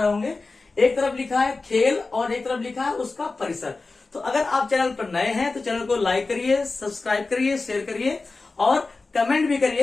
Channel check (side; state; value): right; quieter; 3.7 dB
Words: होंगे एक तरफ लिखा है खेल और एक तरफ लिखा है उसका परिसर। तो अगर आप चैनल पर नए हैं तो चैनल को लाइक करिए, सब्सक्राइब करिए, शेयर करिए और कमेंट भी